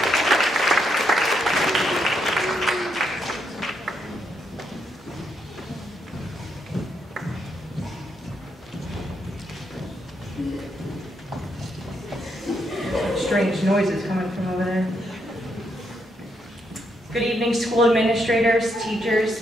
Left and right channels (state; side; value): normal; both; correlation 0.78